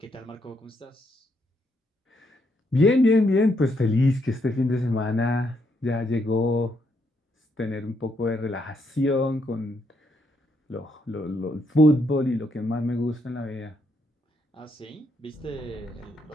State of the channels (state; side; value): normal; both; correlation 0.76